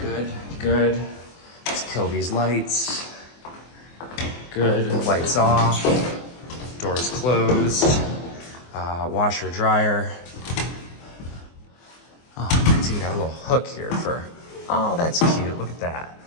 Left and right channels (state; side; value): late; right; 24 ms